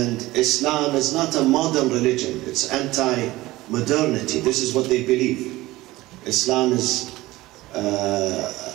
Islam is not a modern religion. It's anti-modernity. This is what they believe. Islam is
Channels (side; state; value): left; quieter; 18.4 dB